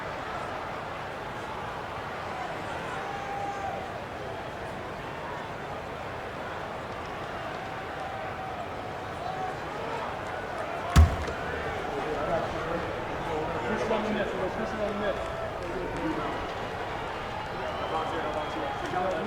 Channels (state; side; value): identical; both; correlation 1.00